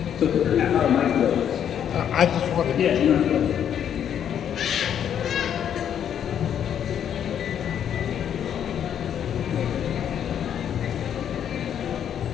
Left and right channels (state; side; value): quieter; right; 9.2 dB